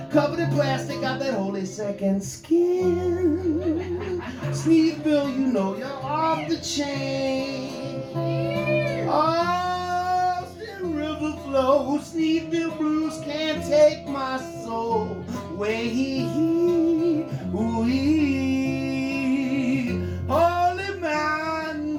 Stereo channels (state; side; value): identical; both; correlation 1.00